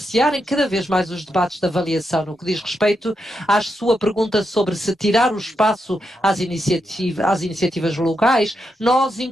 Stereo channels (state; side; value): normal; both; correlation 0.84